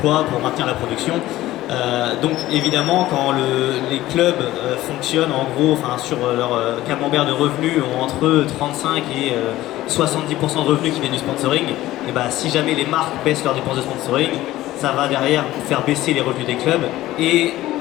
pour maintenir la production. Donc évidemment, quand les clubs fonctionnent en gros, sur leur camembert de revenus ont entre 35 et 70% de revenus qui viennent du sponsoring, et si jamais les marques baissent leurs dépenses de sponsoring, ça va derrière faire baisser les revenus des clubs et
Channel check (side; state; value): right; quieter; 15.8 dB